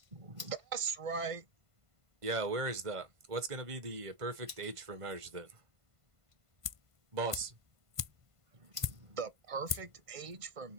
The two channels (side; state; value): left; late; 1.5 ms